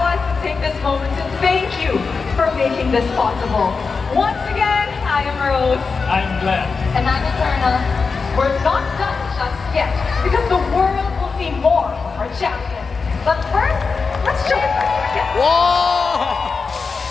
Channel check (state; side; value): quieter; right; 4.8 dB